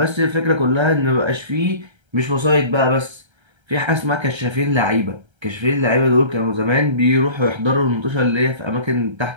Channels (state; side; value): late; left; 1.3 ms